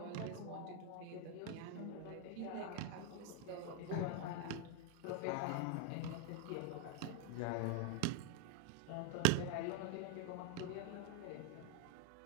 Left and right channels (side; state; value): both; different; correlation -0.01